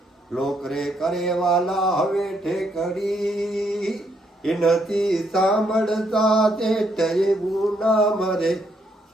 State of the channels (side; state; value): both; normal; correlation 0.74